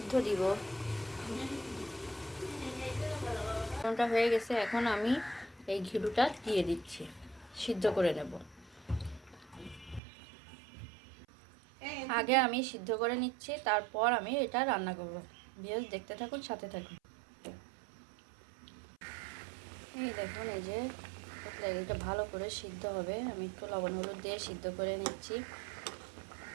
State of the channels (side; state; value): left; drops out; at 10.0 s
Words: দিব। লবণটা হয়ে গেছে, এখন আমি এই ঘিলুটা দিয়ে দিচ্ছি, সিদ্ধ করে নেব। আগে আমি সিদ্ধ করে নিচ্ছি, তারপর আমি এটা রান্না করব। ভিউয়ার্স, দেখতে থাকুন, সাথে থাকুন। এই দেখুন, এই যে এটা ভালো করে সিদ্ধ হবে। আমি একটু লবণ হলুদ দিয়ে সিদ্ধ করে নিচ্ছি,